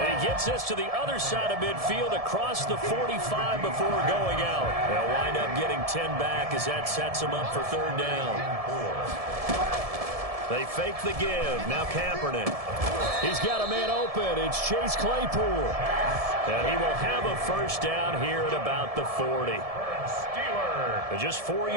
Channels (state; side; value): late; left; 1.7 ms